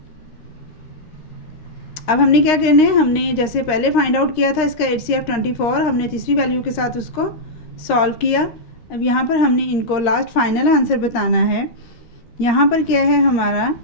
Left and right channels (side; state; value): right; late; 13 ms